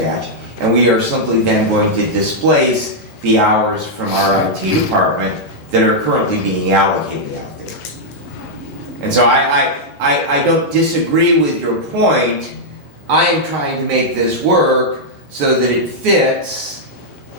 and we are simply then going to displace the hours from our IT department that are currently being allocated out there. And so I don't disagree with your point. I am trying to make this work so that it fits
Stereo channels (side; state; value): both; normal; correlation -0.05